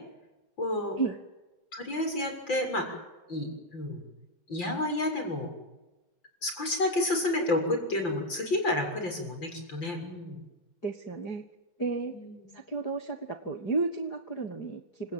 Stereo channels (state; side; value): late; right; 5.8 ms